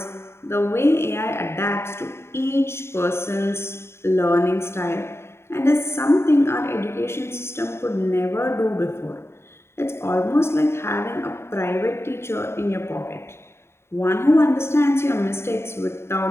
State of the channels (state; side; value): late; right; 0.12 ms